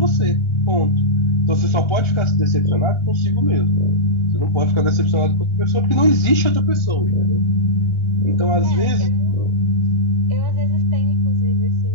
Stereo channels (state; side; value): late; right; 1.6 ms